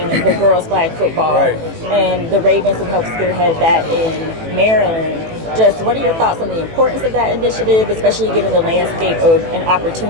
the girls' flag football. Right. And the Ravens have helped spearhead that in Maryland. Just what are your thoughts on the importance of that initiative, especially given the landscape of an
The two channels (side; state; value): left; late; 18 ms